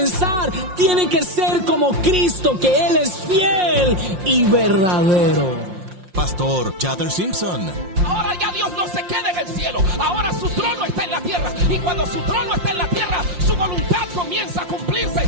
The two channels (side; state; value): left; late; 5.7 ms